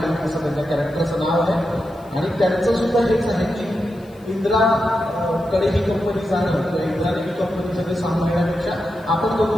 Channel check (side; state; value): left; noise; hiss, 29 dB below the sound